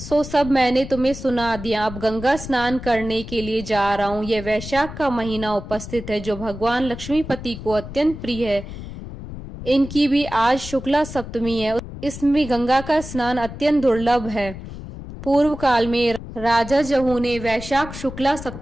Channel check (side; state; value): left; noise; rumble, 11 dB below the sound